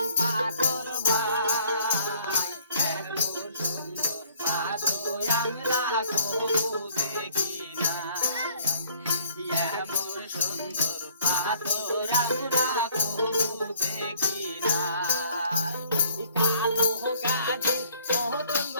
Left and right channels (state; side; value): inverted; both; correlation -0.58